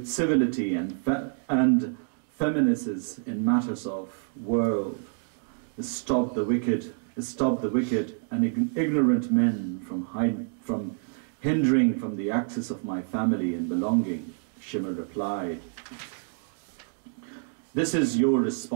and feminists in matters of world. Stop the wicked and ignorant men from hindering from the access of my family and belonging. Shimr replied, this is your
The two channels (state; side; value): silent; left; 60 dB below the other